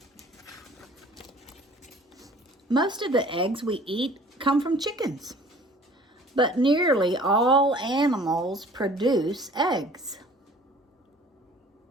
Most of the eggs we eat come from chickens, but nearly all animals produce eggs.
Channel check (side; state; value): both; normal; correlation 0.50